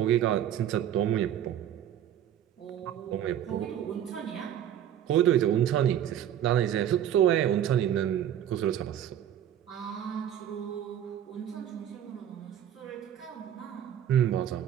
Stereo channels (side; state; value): left; quieter; 10.6 dB